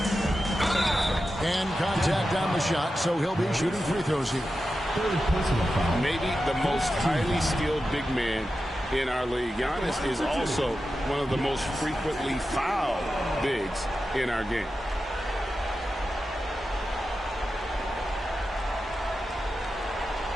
And contact on the shot, so he'll be shooting free throws here. Maybe the most highly skilled big man in our league. Giannis is also one of the most frequently fouled bigs in our game.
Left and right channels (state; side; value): normal; both; correlation 0.91